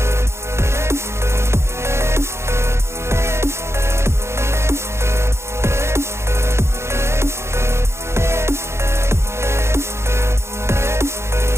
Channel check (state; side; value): late; left; 0.13 ms